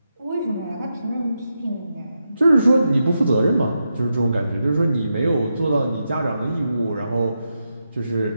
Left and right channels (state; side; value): inverted; both; correlation -0.86